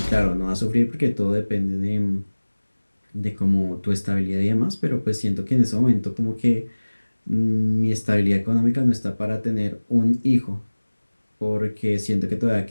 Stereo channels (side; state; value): both; inverted; correlation -1.00